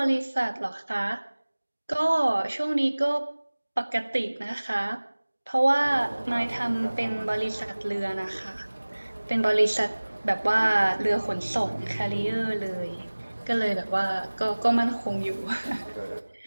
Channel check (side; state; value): both; inverted; correlation -1.00